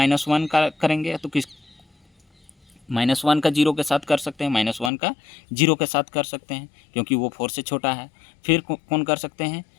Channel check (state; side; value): drops out; right; at 4.9 s